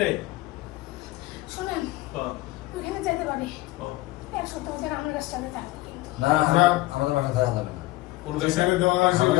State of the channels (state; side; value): quieter; right; 18.8 dB